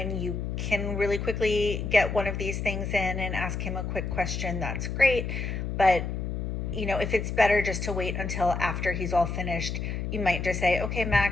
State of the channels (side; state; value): left; noise; hum, 3 dB below the sound